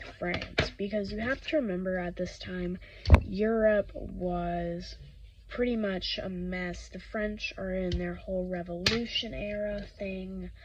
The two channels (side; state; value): both; identical; correlation 1.00